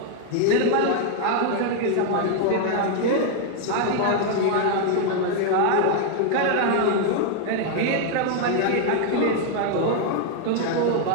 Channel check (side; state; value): both; different; correlation 0.00